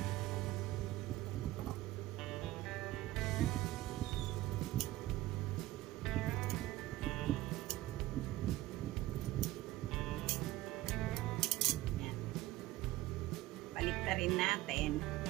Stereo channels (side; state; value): left; quieter; 16.7 dB